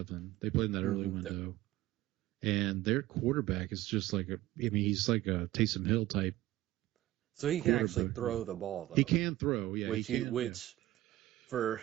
They played in that early window. And their quarterback is just like he's like a Taysom Hill type. So he can actually throw the ball, though. He can throw, yeah. Which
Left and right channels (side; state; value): left; quieter; 16.0 dB